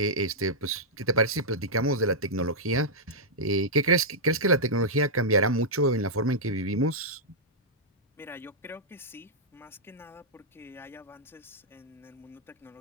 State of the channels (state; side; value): normal; both; correlation -0.09